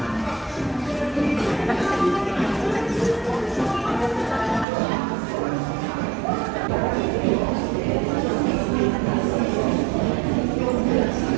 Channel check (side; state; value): left; drops out; at 4.7 s